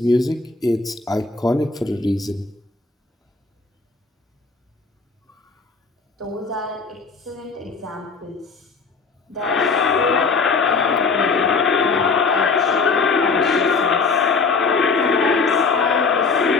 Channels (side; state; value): right; quieter; 4.5 dB